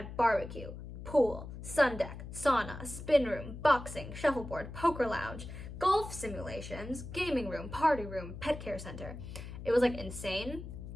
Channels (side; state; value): left; noise; hum, 10 dB below the sound